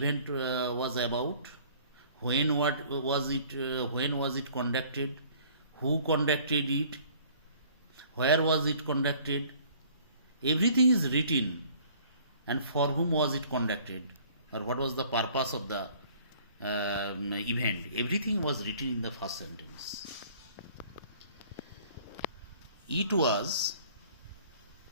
was about, when was it conducted, who conducted it, where was it conducted. Everything is written, and for whom was it conducted, or what was the purpose of the event. Everything was written in the first sentence. It was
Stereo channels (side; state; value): both; inverted; correlation -0.54